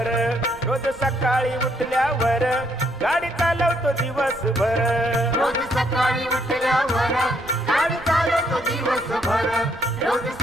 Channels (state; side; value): noise; right; rumble, 19 dB below the sound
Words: रोज सकाळी उठल्यावर गाडी चालवतो दिवसभर रोज सकाळी उठल्यावर गाडी चालवतो दिवसभर रोज